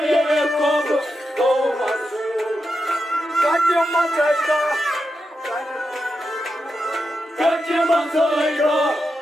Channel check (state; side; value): normal; both; correlation 0.87